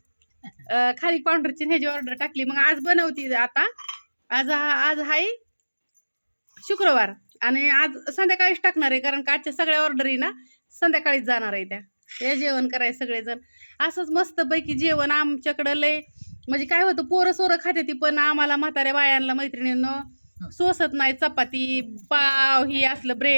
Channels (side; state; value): both; inverted; correlation -1.00